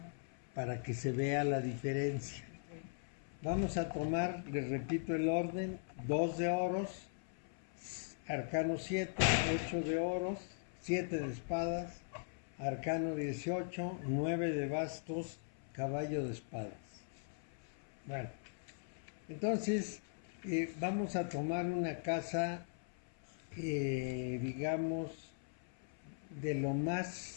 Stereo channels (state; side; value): silent; right; 51 dB below the other